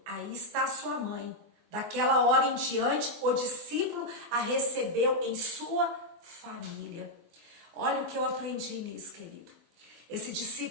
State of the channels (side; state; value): left; late; 24 ms